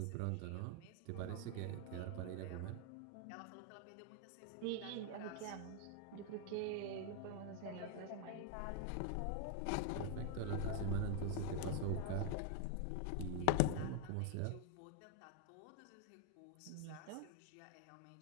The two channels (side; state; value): both; different; correlation 0.00